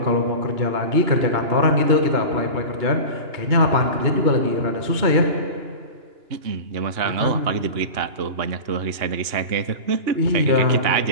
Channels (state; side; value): late; left; 2.9 ms